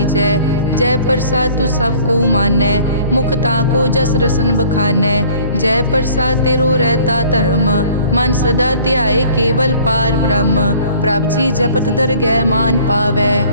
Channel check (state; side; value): inverted; both; correlation -0.52